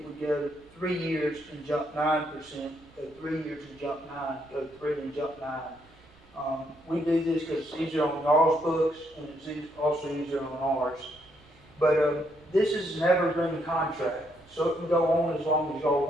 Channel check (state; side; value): noise; right; rumble, 28 dB below the sound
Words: would go 3 years and jump 9%, go 3 years and jump 9, go 3 and jump 9. We do this because it's easier on y'all's books and it's also easier on ours. But this is an evergreen contract, so it can go on as long as y'all